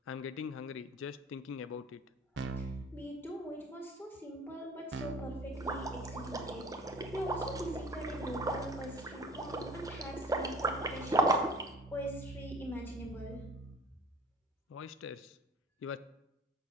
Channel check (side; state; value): both; normal; correlation 0.46